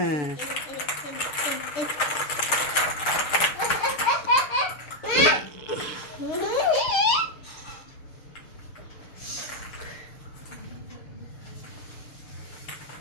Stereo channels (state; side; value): late; right; 6.6 ms